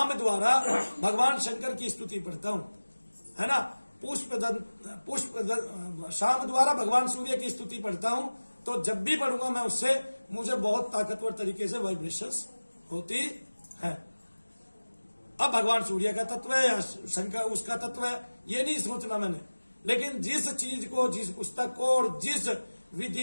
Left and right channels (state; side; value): inverted; both; correlation -1.00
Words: द्वारा भगवान शंकर की स्तुति पढ़ता हूं, है ना, शाम द्वारा भगवान सूर्य की स्तुति पढ़ता हूं, तो जब भी पढ़ूंगा मैं उससे मुझे बहुत ताकतवर तरीके से वाइब्रेशंस होती है। अब भगवान सूर्य का तत्व है या शंकर उसका तत्व है ये नहीं सोचना मैंने। लेकिन जिस चीज को, जिस पुस्तक को और जिस